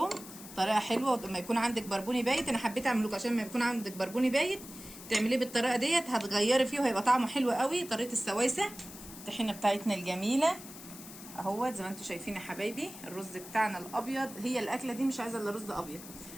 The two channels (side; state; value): left; noise; hiss, 15 dB below the sound